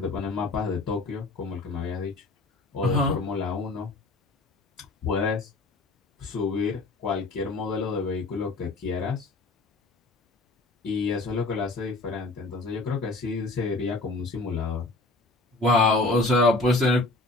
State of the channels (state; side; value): quieter; right; 3.1 dB